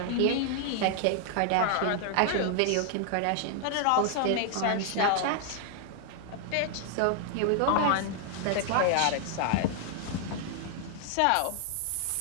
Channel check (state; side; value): different; both; correlation 0.00